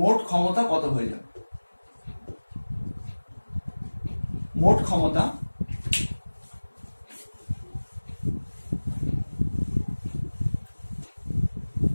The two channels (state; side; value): inverted; both; correlation -1.00